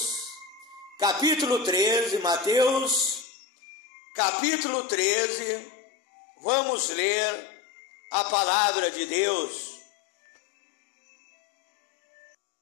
capítulo 13, Mateus, capítulo 13, vamos ler a palavra de Deus.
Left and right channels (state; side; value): drops out; right; at 3.2 s